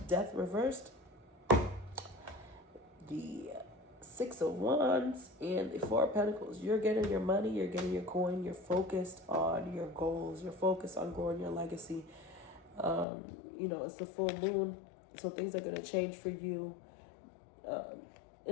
Death reversed, the Six of Wands, and the Four of Pentacles. You're getting your money, you're getting your coin, you're focused on your goals, you're focused on growing your legacy. It's the full moon, so things are going to change for you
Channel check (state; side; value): drops out; right; at 13.1 s